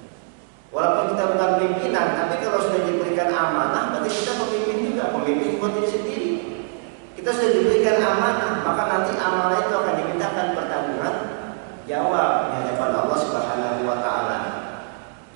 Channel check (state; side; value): silent; left; 58 dB below the other